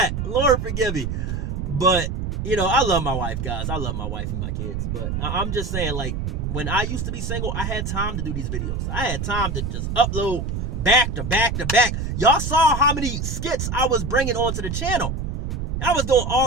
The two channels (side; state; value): right; noise; rumble, 3 dB below the sound